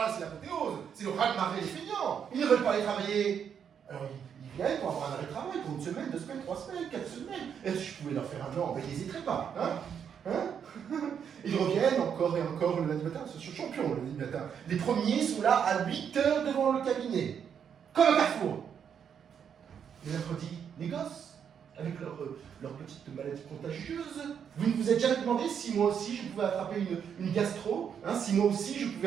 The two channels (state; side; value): quieter; left; 7.8 dB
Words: là, c'est l'apothéose, c'est le raz-de-marée des feignants. Ils ne veulent pas aller travailler. Alors, ils viennent pour avoir un arrêt de travail pour 1 semaine, 2 semaines, 3 semaines, 4 semaines. Et si je pouvais leur faire un an, ben, ils n'hésiteraient pas. Ils reviennent encore et encore le lundi matin. Ce sont champions le lundi matin. Les premiers sont là à 8 heures devant le cabinet. Comme un carrefour. Le mercredi, les gosses, avec leur petite maladie contagieuse. Vous ne vous êtes jamais demandé si moi aussi je pouvais attraper une gastro, si moi aussi je pouvais